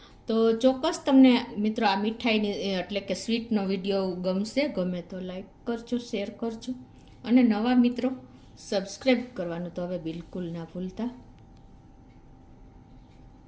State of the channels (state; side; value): identical; both; correlation 1.00